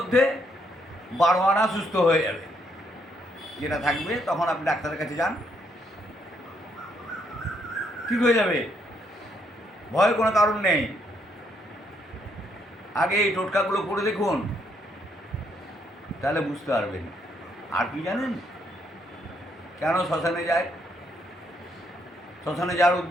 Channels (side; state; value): both; normal; correlation 0.73